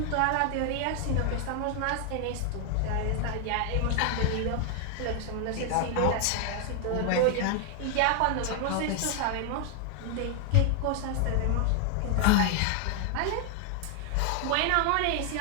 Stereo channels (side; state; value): both; different; correlation 0.00